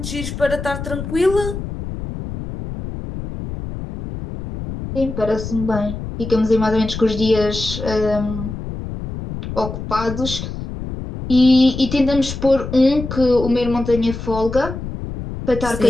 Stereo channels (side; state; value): left; noise; rumble, 8 dB below the sound